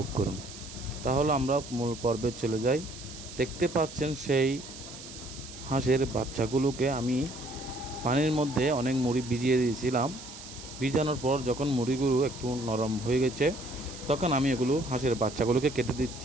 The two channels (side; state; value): right; noise; hiss, 14 dB below the sound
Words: করুন। তাহলে আমরা মূল পর্বে চলে যাই। দেখতে পাচ্ছেন সেই হাঁসের বাচ্চাগুলোকে আমি পানির মধ্যে অনেক মুড়ি ভিজিয়ে দিয়েছিলাম। ভিজানোর পর যখন মুড়িগুলো একটু নরম হয়ে গেছে তখন আমি এগুলো হাঁসের বাচ্চাগুলোকে কেটে